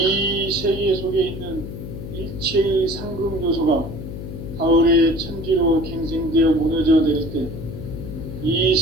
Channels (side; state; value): left; noise; hum, 9 dB below the sound